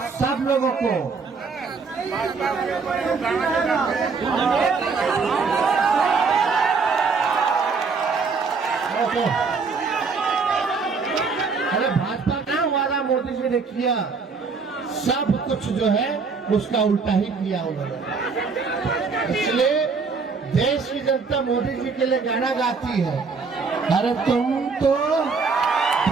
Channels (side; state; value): left; quieter; 4.9 dB